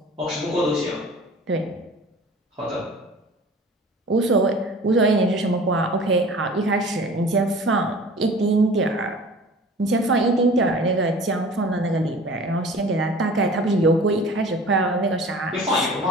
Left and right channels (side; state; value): both; normal; correlation 0.43